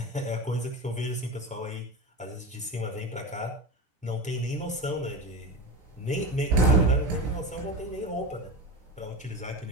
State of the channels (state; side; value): normal; both; correlation 0.24